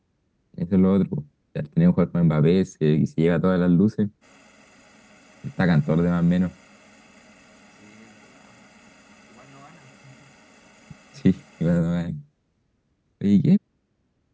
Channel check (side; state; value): both; identical; correlation 1.00